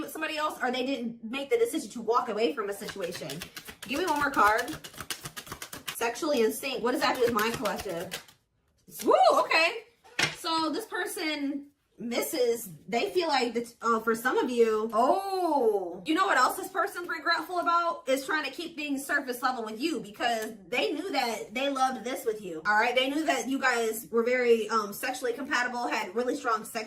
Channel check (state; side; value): identical; both; correlation 1.00